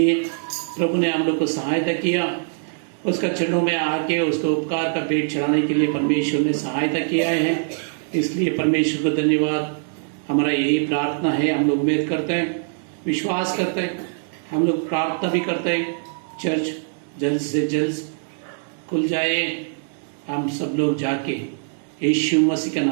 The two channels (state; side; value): silent; left; digital silence